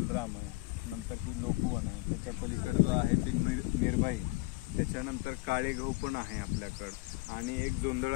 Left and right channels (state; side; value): quieter; right; 23.0 dB